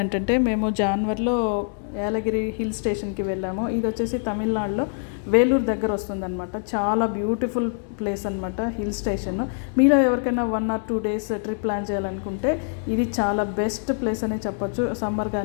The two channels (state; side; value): silent; right; digital silence